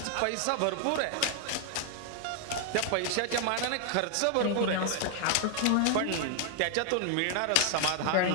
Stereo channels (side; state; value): both; different; correlation 0.00